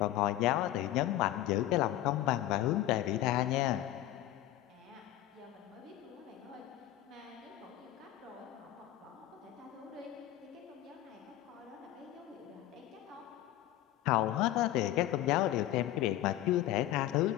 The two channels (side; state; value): right; quieter; 14.0 dB